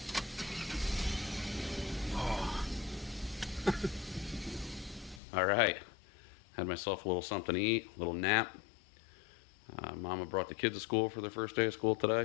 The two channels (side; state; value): right; drops out; at 5.2 s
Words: Oh. All right, had myself a little something to eat, a little nap. Mama brought the kids to school for their first day of school